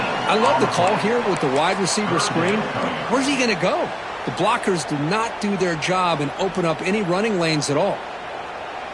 I love the call here with the wide receiver screen. Where's he going to go? The blockers do not do their job and open up any running lanes at all.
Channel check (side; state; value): both; identical; correlation 1.00